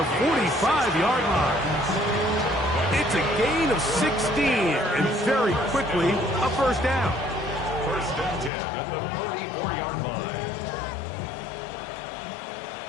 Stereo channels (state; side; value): drops out; right; at 8.5 s